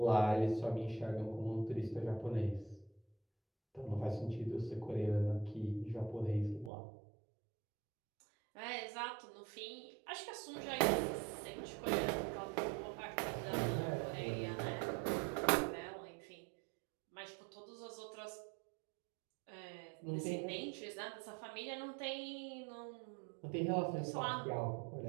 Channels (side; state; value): left; drops out; at 6.7 s